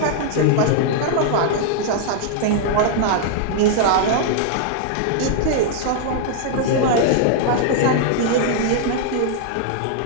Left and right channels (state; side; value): different; both; correlation -0.01